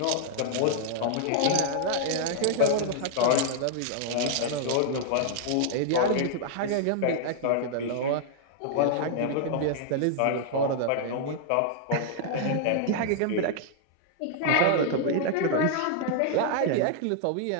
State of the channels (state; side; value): different; both; correlation -0.01